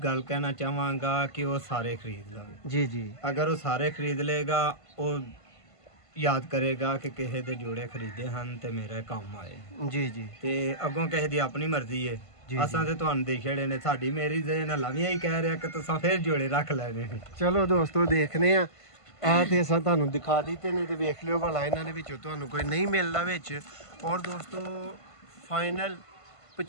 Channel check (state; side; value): late; right; 1.5 ms